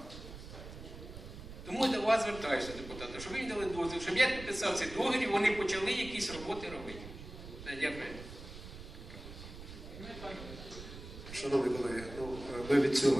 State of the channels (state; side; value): noise; right; rumble, 13 dB below the sound